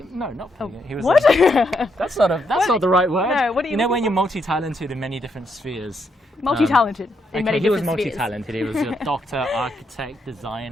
No, not polygamy. He was What? that's not the right word. No, what do you know when mean? you're multi-talented in many different spheres? Multi-talented in many he was different spheres. multi-talented. He was a doctor, architect,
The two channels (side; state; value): both; normal; correlation 0.78